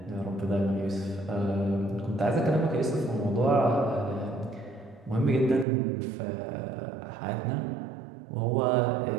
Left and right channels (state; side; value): drops out; left; at 5.7 s